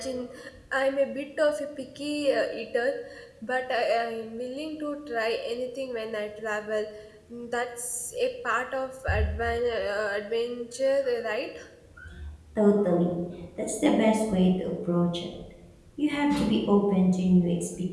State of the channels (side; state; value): both; identical; correlation 1.00